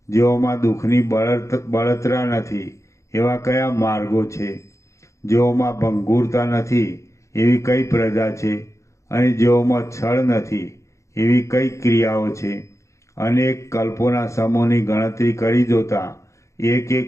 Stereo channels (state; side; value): late; right; 0.15 ms